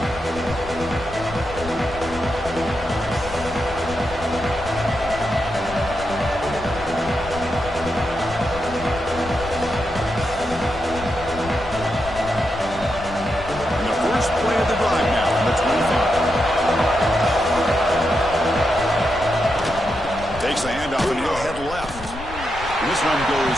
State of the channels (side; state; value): left; noise; rumble, 13 dB below the sound